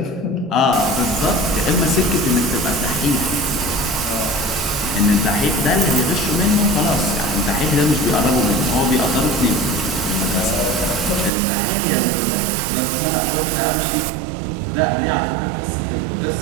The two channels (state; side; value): drops out; left; at 11.3 s